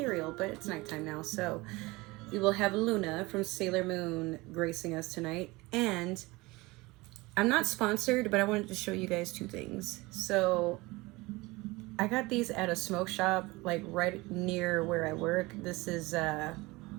But it's nighttime now, so... we will have Luna from Sailor Moon gracing us tonight. And I'm not sponsored, but I wanted to show you guys two things. So I got these at a smoke shop, like right near where I work. This is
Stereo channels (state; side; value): quieter; left; 22.4 dB